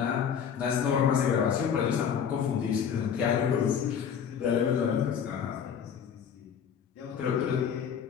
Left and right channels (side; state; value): right; quieter; 7.7 dB